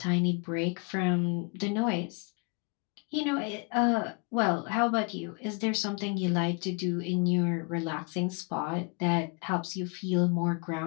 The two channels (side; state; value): right; quieter; 34.0 dB